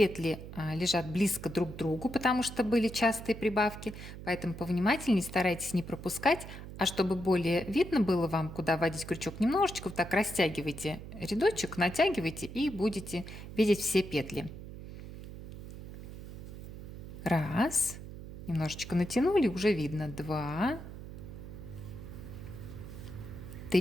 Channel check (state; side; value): noise; right; hum, 11 dB below the sound